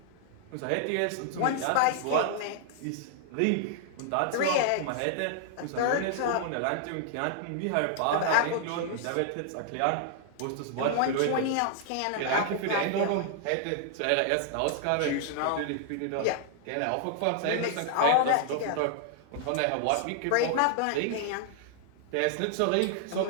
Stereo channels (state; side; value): different; both; correlation -0.01